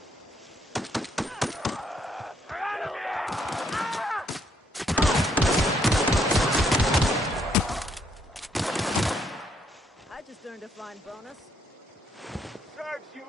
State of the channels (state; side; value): normal; both; correlation 0.70